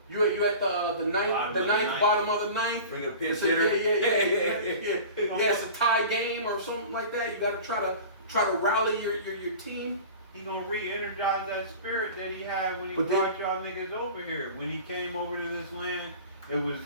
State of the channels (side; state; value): both; inverted; correlation -0.38